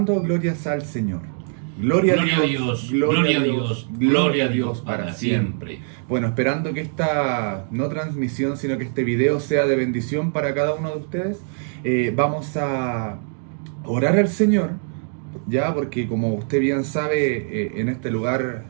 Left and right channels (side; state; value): left; silent; 64 dB below the other